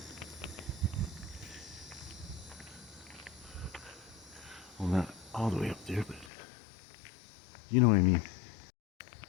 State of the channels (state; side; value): drops out; right; at 6.3 s